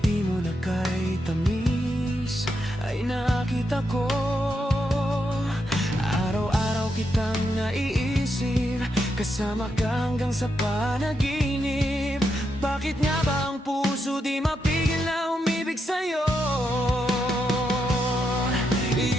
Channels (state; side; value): normal; both; correlation 0.82